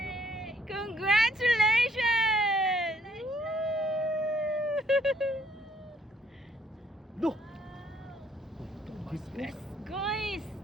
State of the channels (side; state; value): both; normal; correlation 0.65